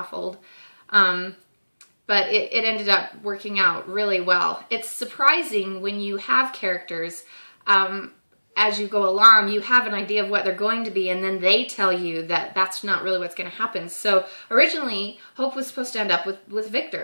old. But it ended up working out really well. It's surprising when you have characters, as you go along, you have an idea of what they're going to be, and then they tell you that that's not really what's going to happen. So originally, Hope was supposed to end up with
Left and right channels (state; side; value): inverted; both; correlation -1.00